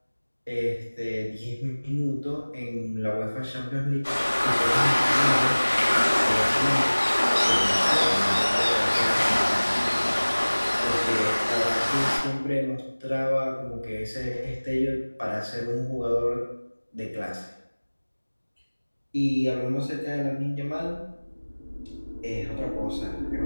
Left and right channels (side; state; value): both; inverted; correlation -1.00